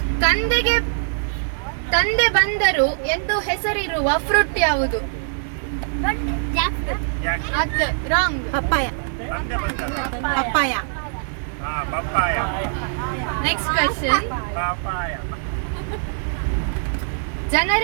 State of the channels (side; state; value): left; silent; digital silence